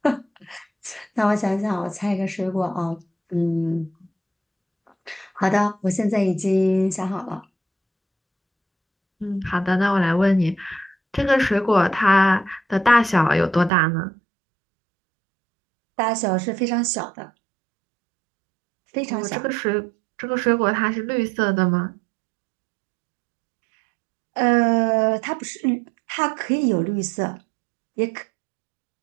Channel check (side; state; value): left; drops out; at 13.7 s